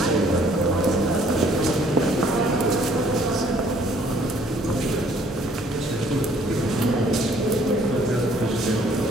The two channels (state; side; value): normal; both; correlation 0.60